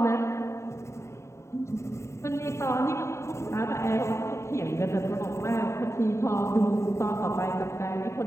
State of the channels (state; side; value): late; right; 0.14 ms